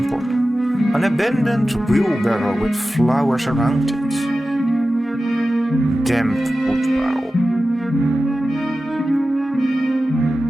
An abandoned wheelbarrow with flowers around it. Damp wood pile.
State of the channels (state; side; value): normal; both; correlation 0.94